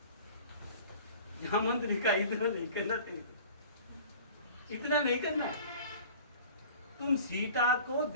मंत्री का इतना नहीं करना चाहिए, इतना नहीं करना। तुम सीता को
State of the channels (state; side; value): inverted; both; correlation -0.44